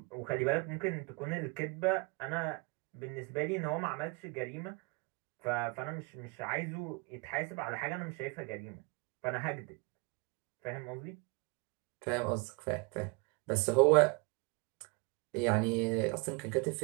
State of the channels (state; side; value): quieter; left; 30.6 dB